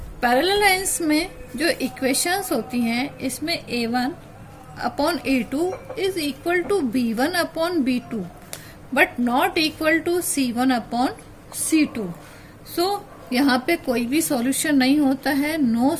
Parallel lines में जो इक्वेशंस होती हैं, इसमें a1 upon a2 is equal to b1 upon b2 but not equal to c1 upon c2। So यहाँ पे कोई भी सॉल्यूशन नहीं होता है, नो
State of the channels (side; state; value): both; identical; correlation 1.00